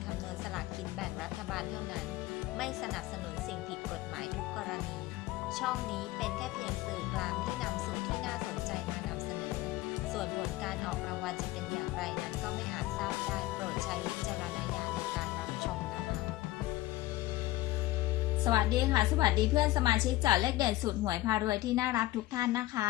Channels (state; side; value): quieter; right; 17.0 dB